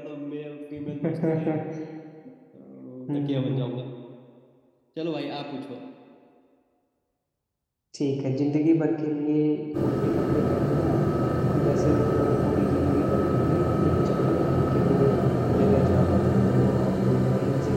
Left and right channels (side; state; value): both; identical; correlation 1.00